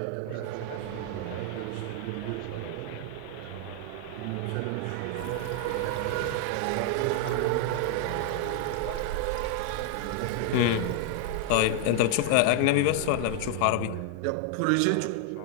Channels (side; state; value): both; different; correlation 0.00